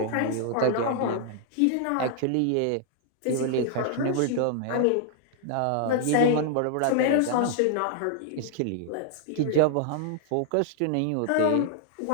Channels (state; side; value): different; both; correlation 0.00